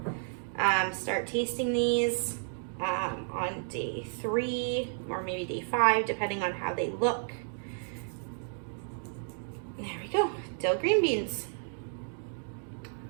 start tasting these on day 3 or maybe day 5, depending on how they look. There we go, dill green beans.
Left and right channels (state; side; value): silent; left; digital silence